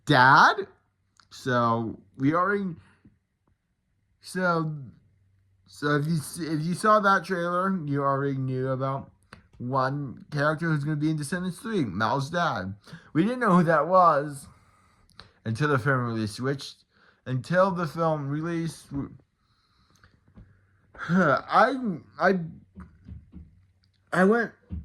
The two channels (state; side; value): identical; both; correlation 1.00